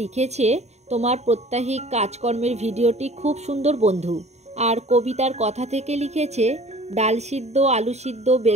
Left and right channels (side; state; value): left; late; 0.32 ms